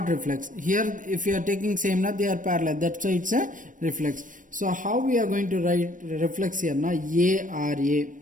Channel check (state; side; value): late; left; 0.38 ms